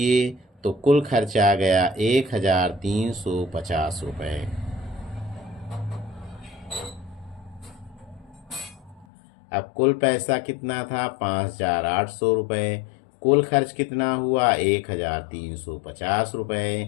तो कुल खर्चा आ गया 1,350 रुपये। अब कुल पैसा कितना था? 5,800 रुपये। कुल खर्च कितना हुआ? 1,350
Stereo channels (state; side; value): drops out; right; at 9.1 s